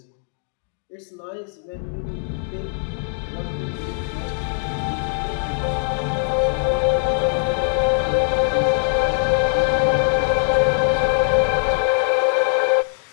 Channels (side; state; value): right; silent; digital silence